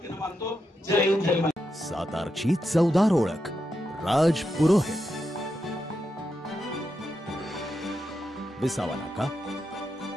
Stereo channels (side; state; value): both; normal; correlation 0.85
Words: मानतो। जय हिंद जय महाराष्ट्र। सातारची चवदार ओळख राज पुरोहित, विसावा नाका,